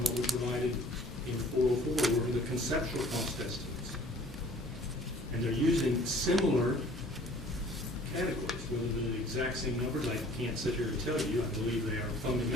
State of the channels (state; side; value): normal; both; correlation 0.52